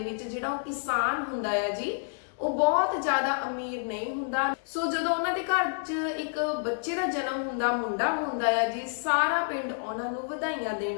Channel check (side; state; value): right; silent; digital silence